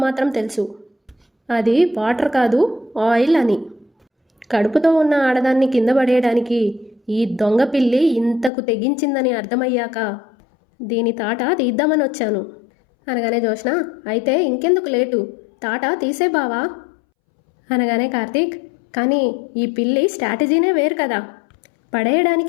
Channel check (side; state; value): right; drops out; at 8.5 s